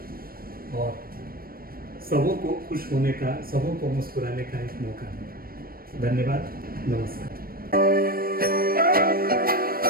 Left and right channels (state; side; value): late; left; 0.43 ms